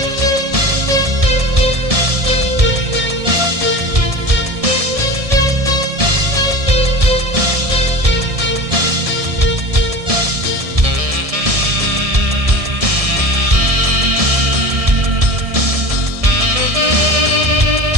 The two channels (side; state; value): left; late; 1.7 ms